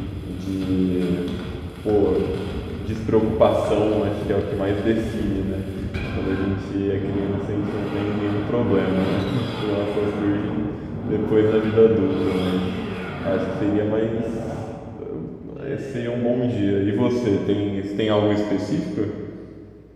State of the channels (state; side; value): identical; both; correlation 1.00